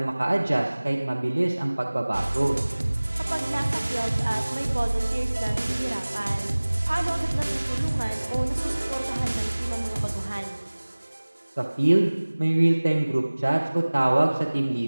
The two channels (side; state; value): both; inverted; correlation -1.00